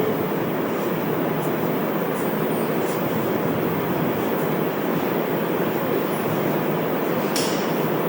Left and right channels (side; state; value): both; identical; correlation 1.00